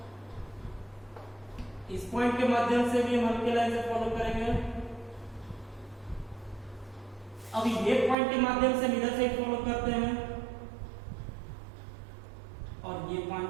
इस पॉइंट के माध्यम से भी हम हल्के लाइन से फॉलो करेंगे। अब ये पॉइंट के माध्यम से इधर से फॉलो करते हैं, और ये पॉइंट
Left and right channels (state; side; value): drops out; left; at 8.2 s